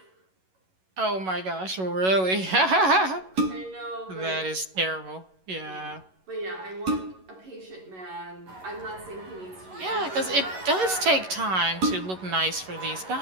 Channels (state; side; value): late; left; 11 ms